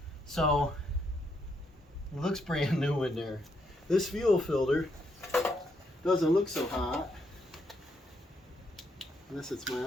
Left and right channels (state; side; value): normal; both; correlation 0.77